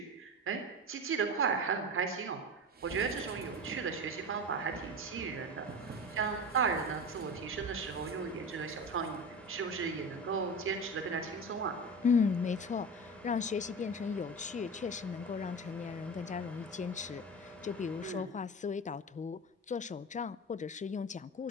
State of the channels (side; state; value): both; normal; correlation 0.28